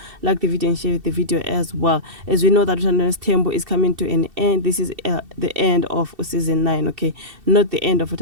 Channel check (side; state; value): left; late; 2.7 ms